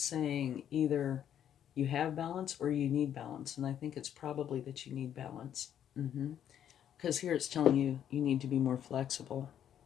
either you have balance or you need balance. And I think it's probably that you need balance. Because here it's telling you you need to be more flexible.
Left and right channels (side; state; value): right; quieter; 9.8 dB